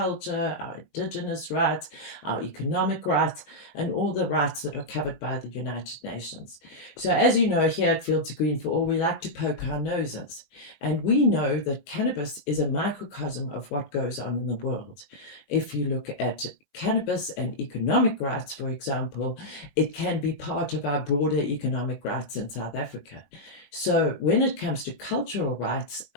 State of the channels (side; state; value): right; late; 16 ms